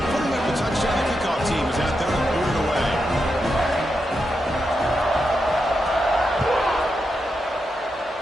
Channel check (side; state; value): both; normal; correlation 0.86